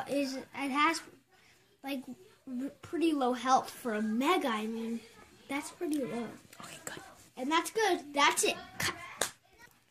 like pretty low health for a Mega. I mean, that's pretty low. Okay, good. And that's good. That's it.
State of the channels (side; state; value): both; identical; correlation 1.00